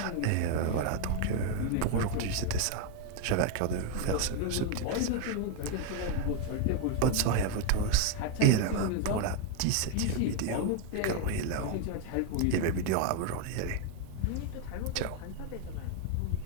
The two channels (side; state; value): both; different; correlation 0.01